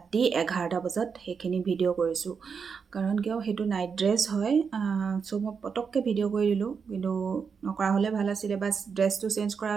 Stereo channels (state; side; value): quieter; left; 6.0 dB